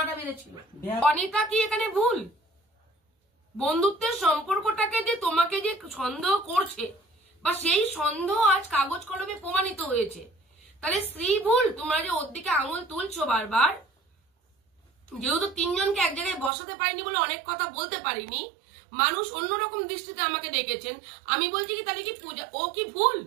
বেড়েছিল। অনিতা কি এখানে ভুল? বন্ধুত্বের সম্পর্কটাকে যে তোমাকে যে সন্দেহ করছে, বা সেই সন্দেহ আজ কাগজ কলমে প্রমাণিত হয়েছে, তাহলে স্ত্রী ভুল? তোমরা যে ওর দিকে আঙুল তুলছো বারবার, যেহেতু তিনজনকে এক জায়গায় বসাতে পারিনি বলে অনেক কথা বলতে পারিনি, মানুষ অন্যরকম দৃষ্টিতে আমাকে দেখেছেন, আমি বলছি কি তাহলে কি পূজা ও কি ভুল?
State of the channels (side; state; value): left; drops out; at 16.5 s